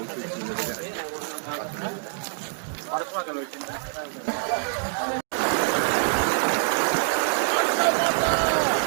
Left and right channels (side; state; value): left; silent; digital silence